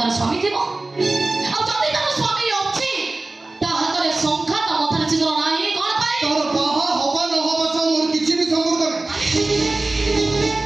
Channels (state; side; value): quieter; left; 3.1 dB